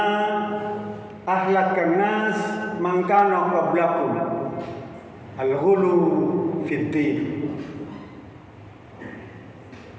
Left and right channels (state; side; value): identical; both; correlation 1.00